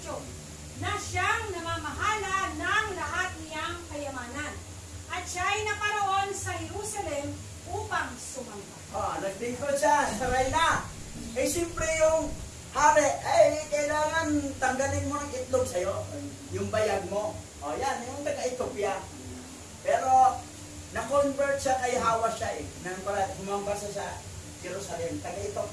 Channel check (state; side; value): identical; both; correlation 1.00